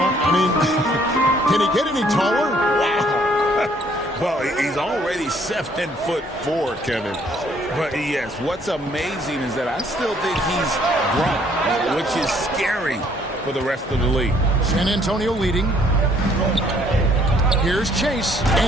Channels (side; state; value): both; normal; correlation 0.63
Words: I mean, can he get any taller? Wow. Well, he's already 7'4", Kevin. But yes, what's amazing is that I still think he's grown, which is scary for the rest of the league. San Antonio leading. Here's Chase,